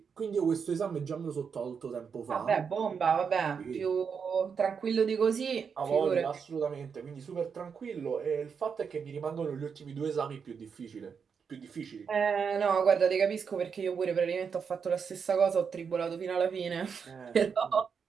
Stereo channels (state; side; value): quieter; left; 6.3 dB